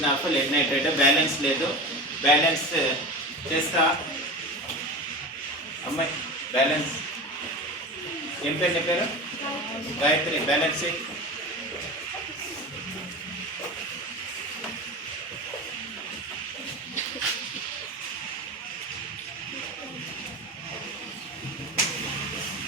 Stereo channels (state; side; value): normal; both; correlation 0.29